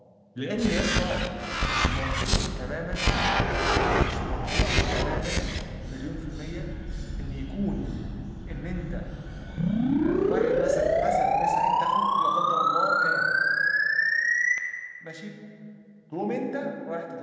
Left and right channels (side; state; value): both; identical; correlation 1.00